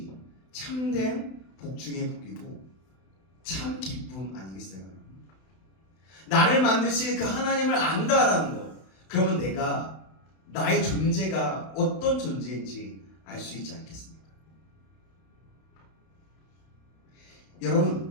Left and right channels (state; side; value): late; right; 31 ms